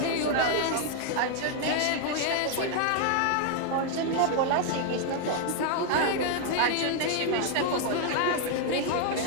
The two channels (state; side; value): different; both; correlation 0.00